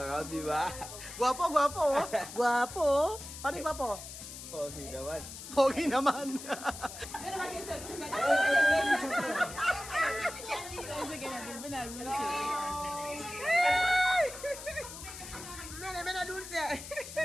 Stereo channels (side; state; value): left; noise; hiss, 12 dB below the sound